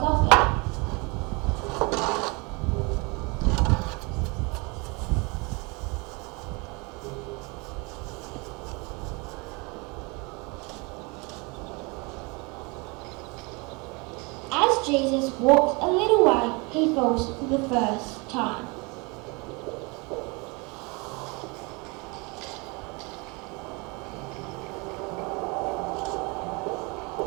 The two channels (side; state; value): left; quieter; 28.7 dB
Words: As Jesus walks a little way, he falls for the first time.